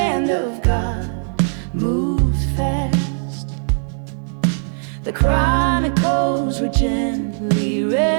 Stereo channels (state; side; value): silent; left; 66 dB below the other